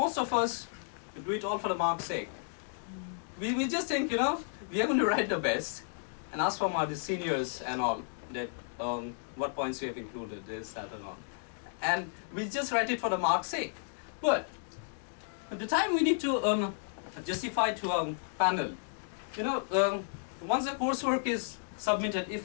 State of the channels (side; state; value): right; silent; digital silence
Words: of us do it all for the mark's sake. We just think, you know, we are going to write the best and ask from our seniors and all that what points we have included, this, that, and all. And we just write it for the mark's sake. But at the time we need to justify to a panel, you know, once the coursework is submitted,